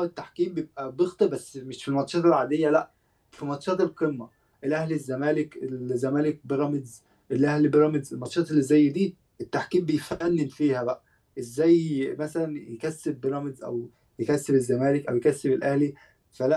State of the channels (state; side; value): identical; both; correlation 1.00